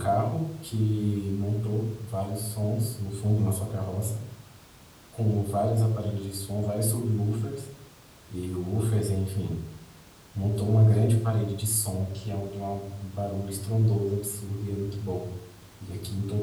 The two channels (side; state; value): both; identical; correlation 1.00